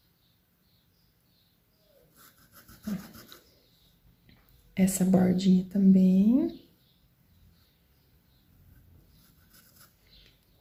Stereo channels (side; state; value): both; identical; correlation 1.00